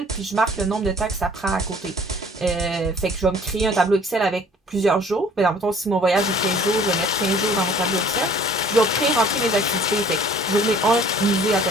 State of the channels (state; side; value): normal; both; correlation 0.53